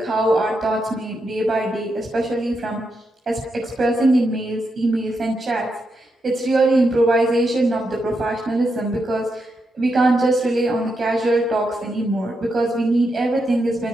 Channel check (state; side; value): normal; both; correlation 0.84